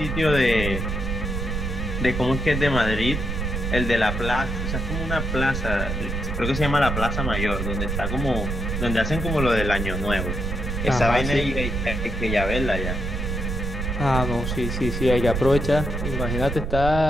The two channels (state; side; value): noise; right; rumble, 2 dB below the sound